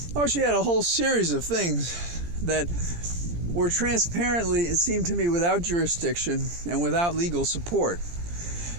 she had a whole series of things that were transparently, it seemed to me, without jurisdiction and without legal support.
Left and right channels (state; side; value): late; left; 17 ms